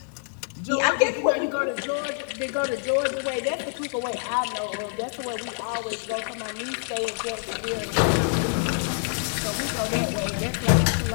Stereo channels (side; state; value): right; silent; 56 dB below the other